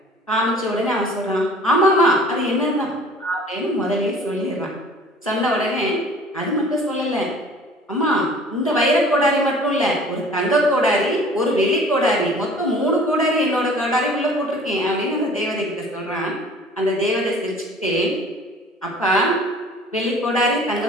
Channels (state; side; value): normal; both; correlation 0.48